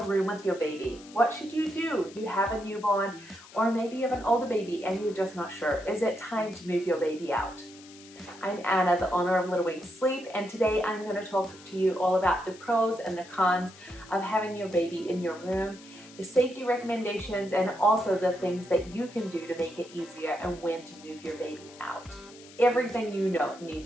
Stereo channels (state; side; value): noise; left; hiss, 21 dB below the sound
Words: room with your baby? What should you do? You have a newborn, or maybe you have an older baby and you're just not sure. Is it time to move your baby out? I'm Anna, the owner of Little Wings Sleep, and today I'm going to talk to you all about the pros and the cons of having your baby in your room, the safety recommendations, and also the things that you can do to make it easier and when to move your baby out. Everything you need